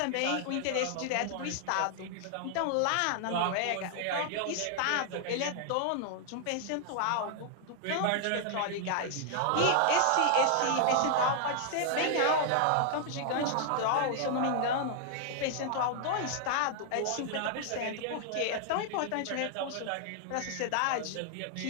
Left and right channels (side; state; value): both; different; correlation 0.00